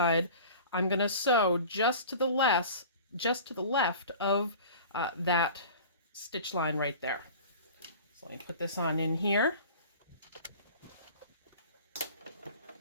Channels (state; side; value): inverted; both; correlation -0.40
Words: I'm going to sew just to the left of that stitch line right there. So let me put this on in here.